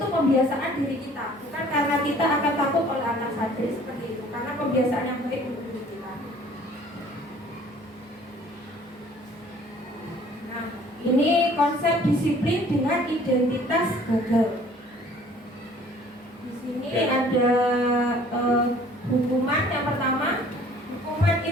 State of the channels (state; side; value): normal; both; correlation 0.54